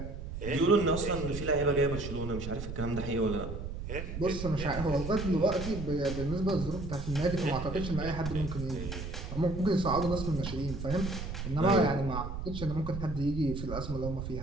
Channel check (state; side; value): noise; right; rumble, 6 dB below the sound